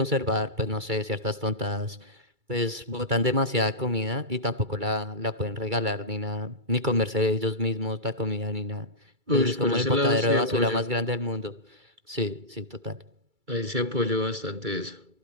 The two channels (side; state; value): left; late; 2.3 ms